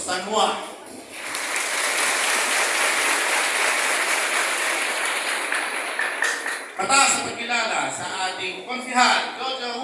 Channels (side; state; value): both; identical; correlation 1.00